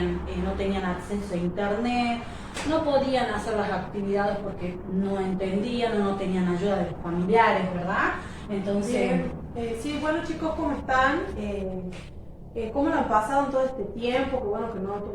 tenían acceso a internet, no podían hacer las actividades porque no entendían o no tenían ayuda de los familiares, ¿verdad? Entonces, Bien, sí, bueno chicos, ¿cómo están? ¿Cómo lo han pasado en todo este tiempo? Que bueno, que no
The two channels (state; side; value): identical; both; correlation 1.00